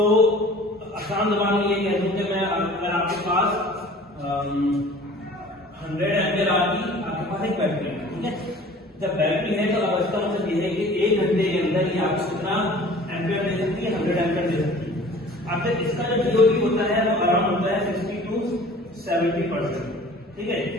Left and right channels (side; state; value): both; normal; correlation 0.46